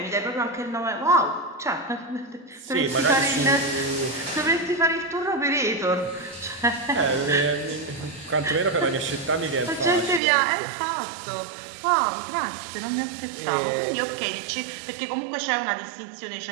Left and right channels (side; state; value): left; drops out; at 10.2 s